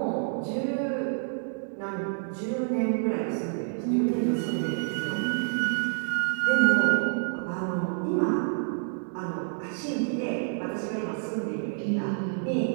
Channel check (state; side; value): silent; left; digital silence